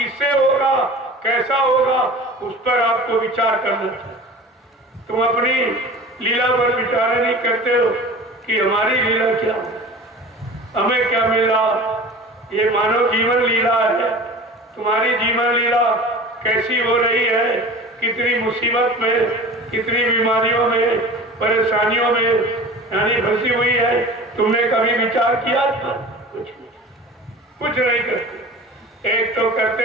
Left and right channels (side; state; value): both; normal; correlation 0.38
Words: होगा, कैसा होगा, उस पर आपको विचार करना चाहिए। तुम अपनी लीला पर विचार नहीं करते हो कि हमारी लीला क्या हो, हमें क्या मिला। ये मानव जीवन लीला है, तुम्हारी जीवन लीला कैसी हो रही है, कितनी मुसीबत में, कितनी बीमारियों में, परेशानियों में यानी फंसी हुई है। तुमने कभी विचार किया था? कुछ नहीं करते। एक तो